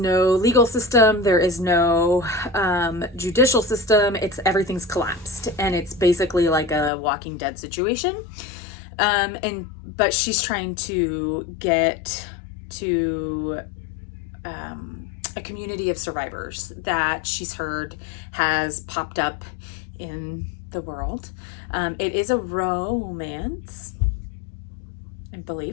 legal system, there is no, judicial system. Everything's collapsed, and it's basically like a Walking Dead situation. But she's trying to get to, a community of survivors that she's heard has popped up in the world. It is a romance, I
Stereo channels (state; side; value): drops out; right; at 6.9 s